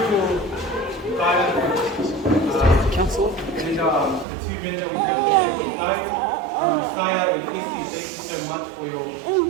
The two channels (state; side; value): drops out; left; at 4.2 s